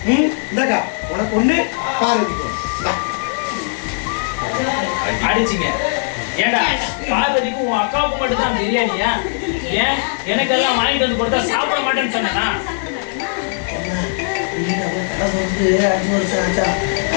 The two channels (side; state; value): right; silent; digital silence